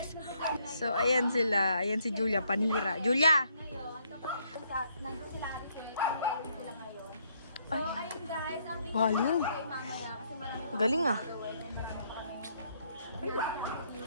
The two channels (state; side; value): inverted; both; correlation -0.70